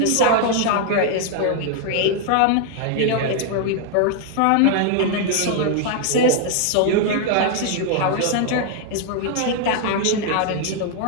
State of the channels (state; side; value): different; both; correlation 0.00